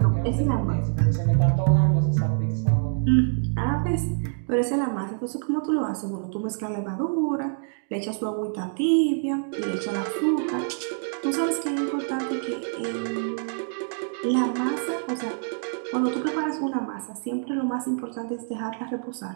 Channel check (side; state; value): left; silent; digital silence